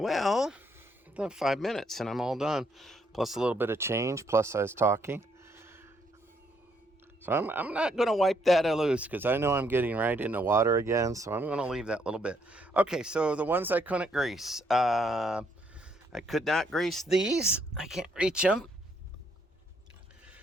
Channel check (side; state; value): both; normal; correlation 0.71